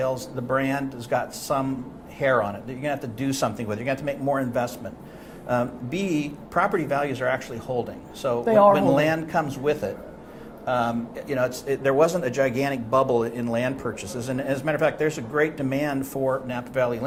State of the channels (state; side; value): identical; both; correlation 1.00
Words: the brand has got some hair on it that you're going to have to do something with. You're going to have to make more investment. B, property values are actually holding. So when land comes with it, there wasn't a gigantic bubble in land purchases, and as a matter of fact, there's a great demand for Napa Valley